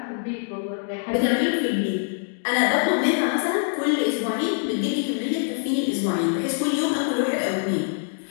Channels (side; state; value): right; silent; digital silence